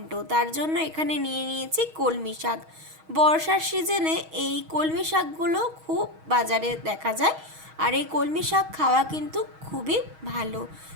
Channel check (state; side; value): late; left; 6.3 ms